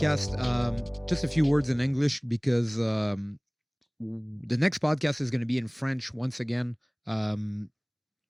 Just a few words in English because the next podcast is going to be in French once again.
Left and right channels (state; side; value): identical; both; correlation 1.00